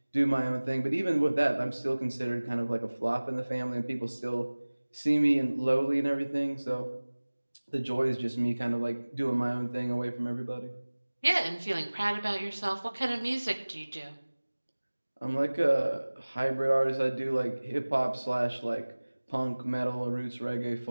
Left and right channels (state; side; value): inverted; both; correlation -1.00